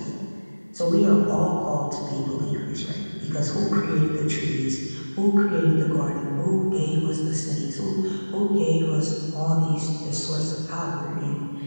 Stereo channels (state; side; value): inverted; both; correlation -1.00